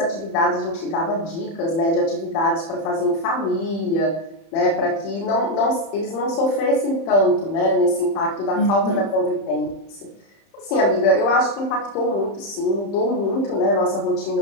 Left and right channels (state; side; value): late; right; 30 ms